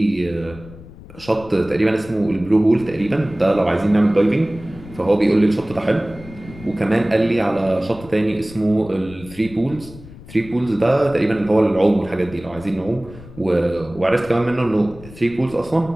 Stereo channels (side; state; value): left; noise; rumble, 18 dB below the sound